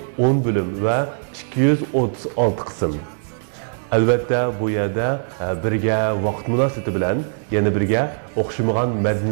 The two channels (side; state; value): left; silent; digital silence